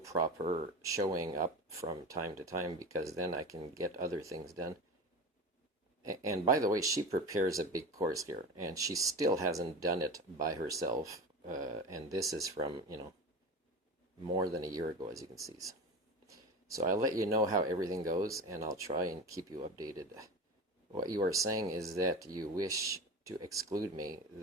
showing up from time to time, because then I can get other things done. And by the way, she prepares a big course here, and she still hasn't done it by herself. And this is from, more than a year ago, as you can see. So I'll let you know how everything goes, and I'll try and keep you updated. What you are saying is that you wish to exclude me,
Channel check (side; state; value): both; normal; correlation 0.29